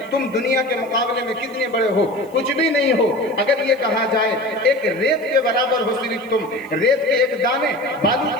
تم دنیا کے مقابلے میں کتنے بڑے ہو، کچھ بھی نہیں ہو۔ اگر یہ کہا جائے ایک ریت کے برابر ہو، صرف تم ریت کے ایک دانے، بالو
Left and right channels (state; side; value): noise; left; hiss, 29 dB below the sound